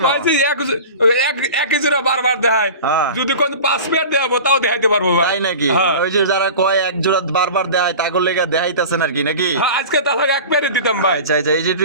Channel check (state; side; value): inverted; both; correlation -0.35